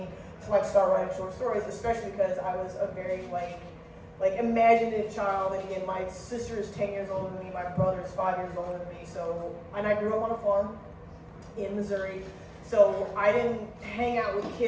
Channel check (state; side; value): identical; both; correlation 1.00